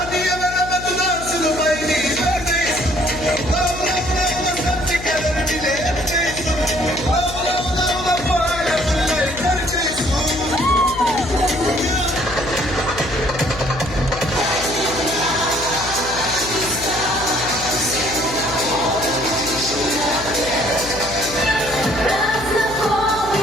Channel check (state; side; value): noise; left; hum, 12 dB below the sound